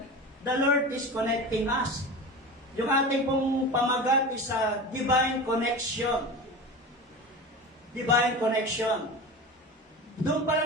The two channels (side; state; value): both; normal; correlation 0.30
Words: the Lord is connecting us. Yung ating pong pamagat is a divine connection. Divine connection. Doon pa